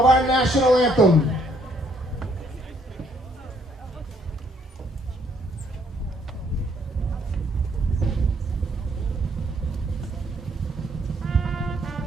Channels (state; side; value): normal; both; correlation 0.67